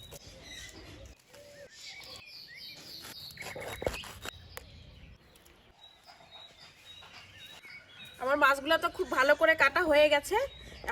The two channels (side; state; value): both; identical; correlation 1.00